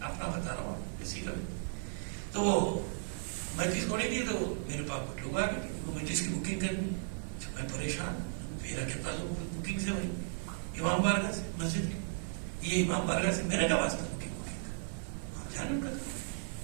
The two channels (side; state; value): left; silent; 54 dB below the other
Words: اپنا بتا رہا ہوں کسی کا بھی. تو میں جس کو نہیں دی تو میرے پاس کچھ لوگ آ گئے، میں جس کی بکنگ کرنی، میں پریشان. میرا کیا تعلق بکنگ سے؟ بھائی امام بارگاہ سے، مسجد کی، یہ امام بارگاہ سے میرا کیا واسطہ بکنگ آپ جانیں کا.